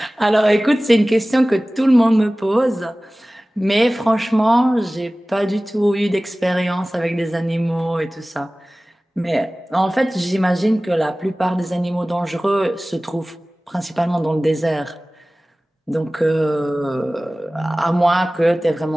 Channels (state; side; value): normal; both; correlation 0.98